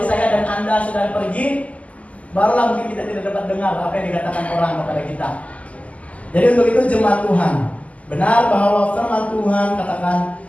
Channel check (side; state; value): right; late; 0.070 ms